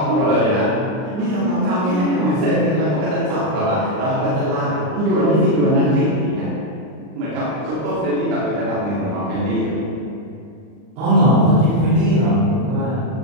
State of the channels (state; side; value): late; left; 39 ms